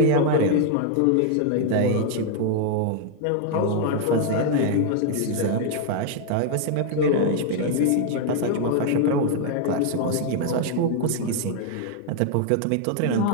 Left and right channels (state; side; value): different; both; correlation 0.00